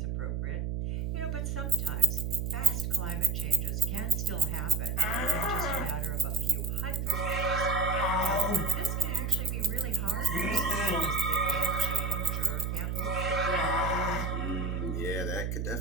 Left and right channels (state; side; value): noise; right; hum, 1 dB below the sound